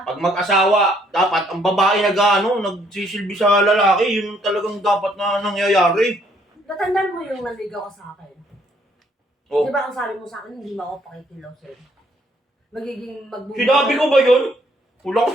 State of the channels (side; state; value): both; normal; correlation 0.67